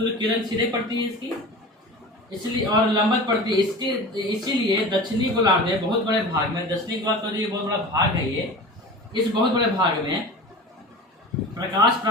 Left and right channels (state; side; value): normal; both; correlation 0.35